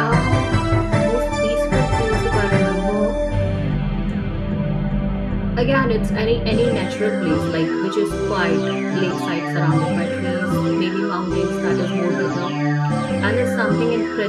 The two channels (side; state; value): both; identical; correlation 1.00